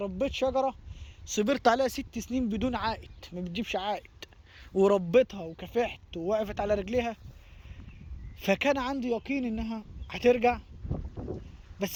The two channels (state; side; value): identical; both; correlation 1.00